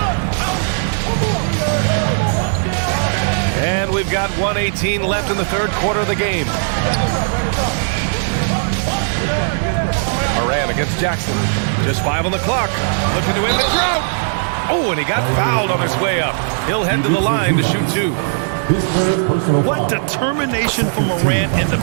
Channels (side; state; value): left; silent; 64 dB below the other